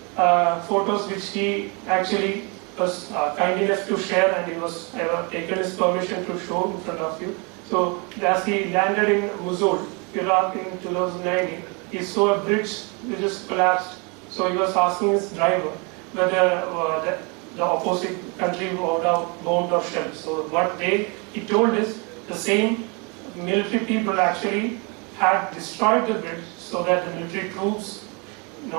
photos which he actually was kind enough to share, and he was taken his permission to show in front of you. So as he landed in Mosul, Iraq in 2019, he saw a bridge which just collapsed. So he was asking his driver whether the opposite country would have bombed or shelled. So what he told is the same military people actually had destroyed the bridge so that the military troops,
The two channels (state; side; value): quieter; left; 31.7 dB